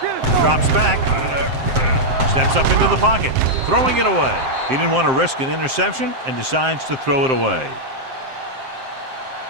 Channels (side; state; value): left; late; 7.6 ms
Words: Drops back. Steps up into the pocket. Throwing it away. He didn't want to risk an interception and decides to throw it away.